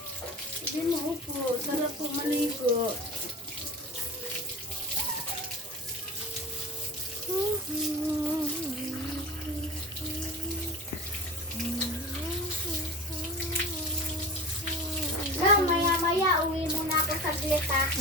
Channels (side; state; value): both; normal; correlation 0.34